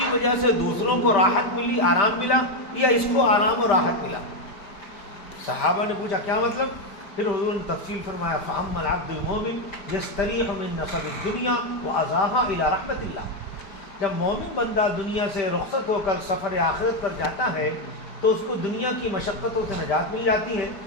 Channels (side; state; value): right; late; 5.1 ms